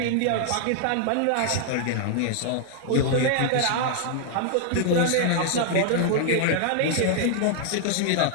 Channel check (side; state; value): both; different; correlation 0.00